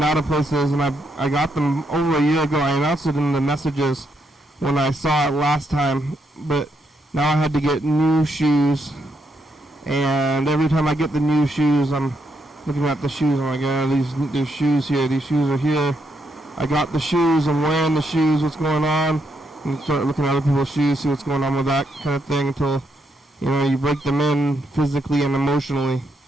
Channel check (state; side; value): normal; both; correlation 0.78